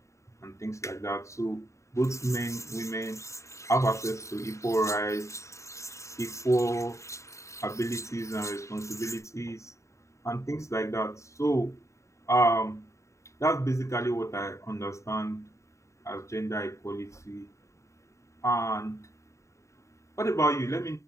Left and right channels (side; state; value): right; late; 0.14 ms